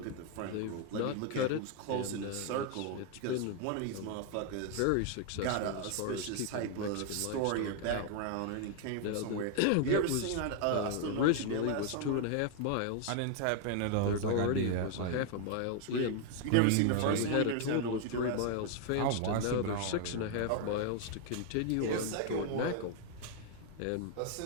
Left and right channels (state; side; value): different; both; correlation 0.00